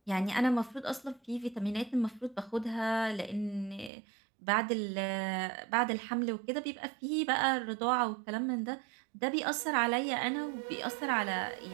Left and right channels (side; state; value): left; drops out; at 3.9 s